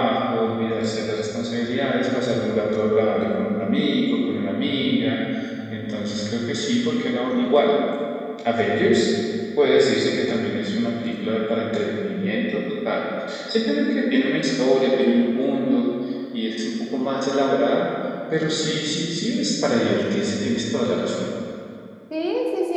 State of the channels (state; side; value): identical; both; correlation 1.00